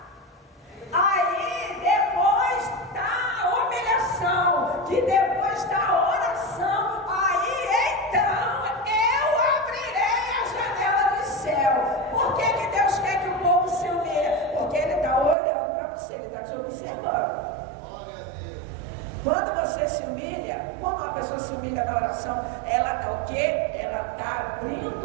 Aí depois da humilhação, que depois da oração, aí então eu abrirei a janela do céu. Por que Deus quer que o povo se humilhe? Porque Ele está olhando para você, Ele está te observando. Quando você se humilha, quando uma pessoa se humilha na oração, ela está o quê? Ela está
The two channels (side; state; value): left; drops out; at 15.4 s